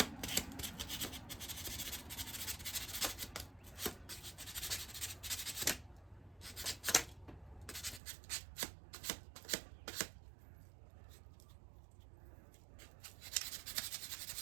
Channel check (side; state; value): left; drops out; at 8.0 s